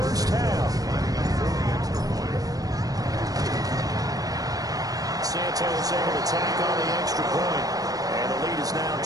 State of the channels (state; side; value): late; left; 0.18 ms